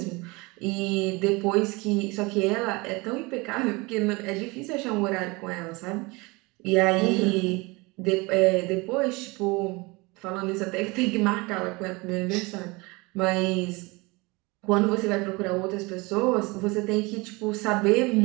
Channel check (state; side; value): quieter; left; 25.1 dB